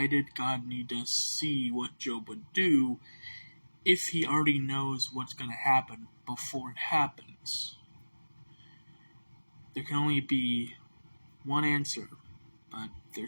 did God need to see what Job would do if he already knows what's going to happen before it happens? There can only be one answer, but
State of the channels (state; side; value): inverted; both; correlation -1.00